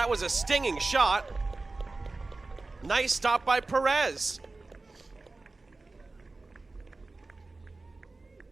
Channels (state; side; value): quieter; left; 3.4 dB